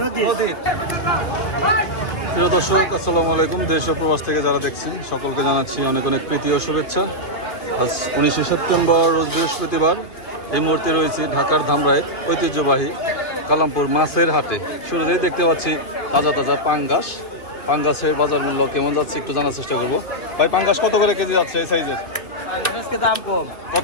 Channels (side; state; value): right; late; 2.2 ms